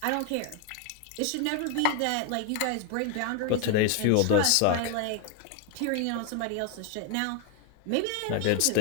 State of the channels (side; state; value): both; different; correlation 0.01